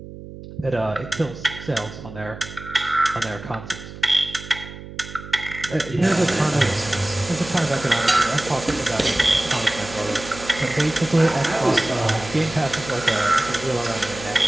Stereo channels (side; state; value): right; noise; hum, 14 dB below the sound